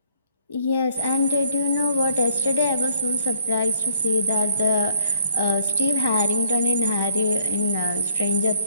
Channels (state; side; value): inverted; both; correlation -0.64